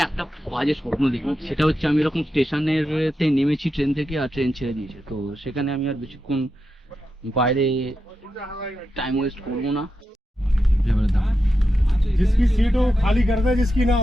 একটা বাজে স্বপ্ন দেখি, সেটা হচ্ছে আমি এরকম স্টেশনের নেমেছি ট্রেন থেকে, আর ট্রেন ছেড়ে দিয়েছে। তো সেখানে আমি আর বেশিক্ষণ বাইরে টাইম ওয়েস্ট করবো না। जिसकी सीट हो खाली कर दे, जिसकी ना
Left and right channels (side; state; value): both; normal; correlation 0.88